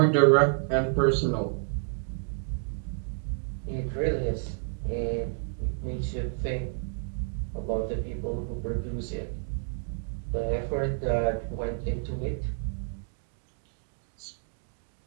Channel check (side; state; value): left; silent; 58 dB below the other